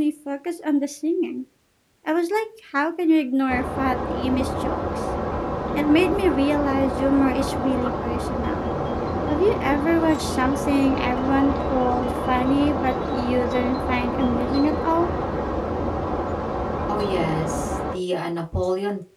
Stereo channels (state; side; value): identical; both; correlation 1.00